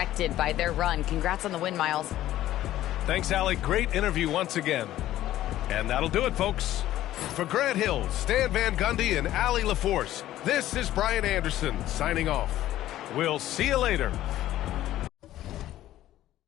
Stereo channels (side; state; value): right; quieter; 13.8 dB